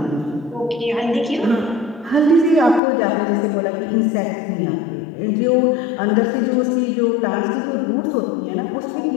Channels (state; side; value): drops out; right; at 2.8 s